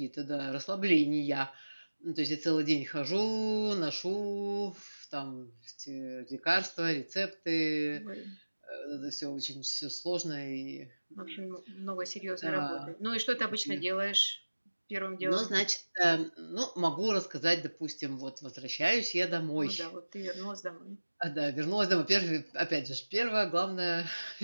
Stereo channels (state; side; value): inverted; both; correlation -1.00